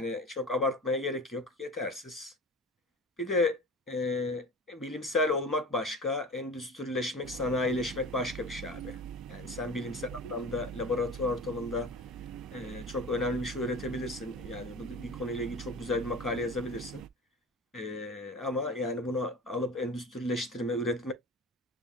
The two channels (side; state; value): both; normal; correlation 0.35